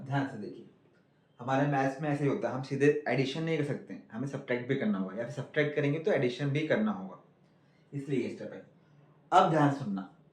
ध्यान से देखिए, हमारे मैथ्स में ऐसे ही होता है, हम सीधे एडिशन नहीं कर सकते, हमें सब्ट्रैक्ट भी करना होगा, या फिर सब्ट्रैक्ट करेंगे तो एडिशन भी करना होगा, इसलिए ये स्टेप है। अब ध्यान सुनना,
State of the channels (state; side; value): identical; both; correlation 1.00